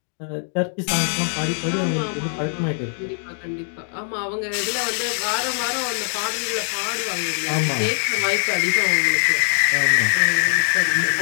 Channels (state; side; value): silent; right; digital silence